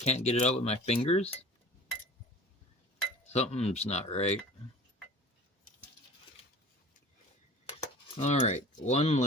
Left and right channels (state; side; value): normal; both; correlation 0.41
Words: get it out with my fingers? Something's not right. Alright, one